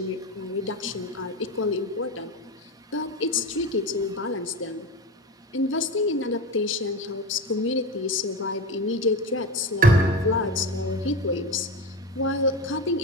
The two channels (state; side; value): normal; both; correlation 0.24